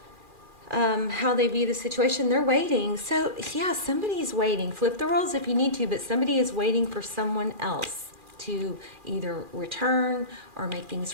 How they view the situation, they're waiting. So, yeah, somebody's waiting. Flip the roles if you need to, but somebody is waiting for someone else to either return or make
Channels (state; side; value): late; left; 2.4 ms